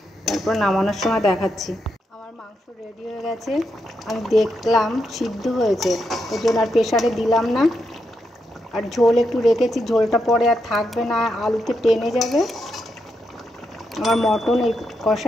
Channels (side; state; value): both; normal; correlation 0.83